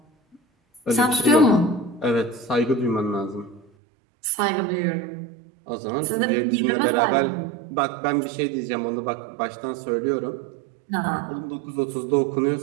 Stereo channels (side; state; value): left; drops out; at 3.7 s